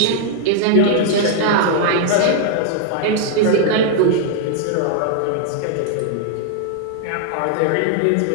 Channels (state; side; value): different; both; correlation 0.00